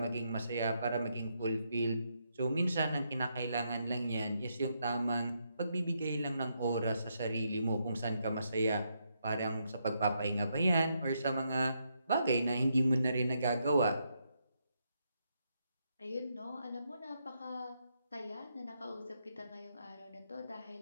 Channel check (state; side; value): inverted; both; correlation -0.79